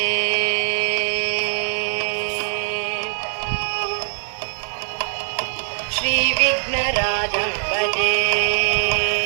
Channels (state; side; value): silent; left; 64 dB below the other